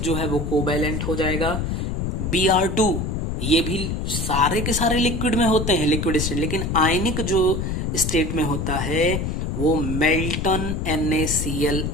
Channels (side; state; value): left; noise; rumble, 2 dB below the sound